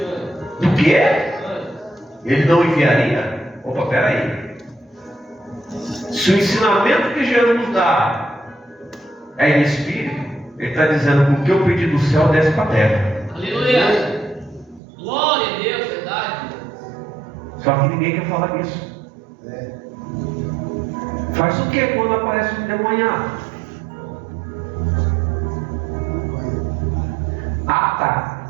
anjos. Do quê? Ele não enviaria? Opa, peraí. Se o ensinamento que Jesus nos dá é em espírito, ele está dizendo que o que eu pedi do céu desce para a terra. Aleluia. Glória a Deus, verdade. Só que ninguém quer falar disso. Faz o que quando aparece um demoniado? Ah, tá.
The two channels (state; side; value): drops out; left; at 14.8 s